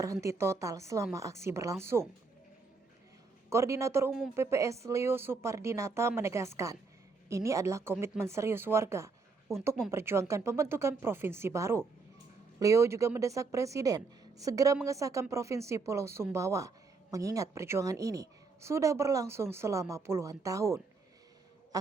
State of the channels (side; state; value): left; quieter; 4.3 dB